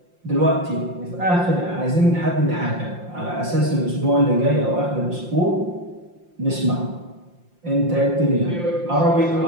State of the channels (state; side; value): late; left; 5.7 ms